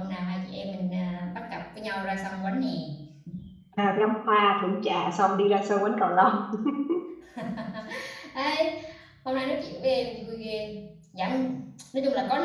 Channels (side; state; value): both; identical; correlation 1.00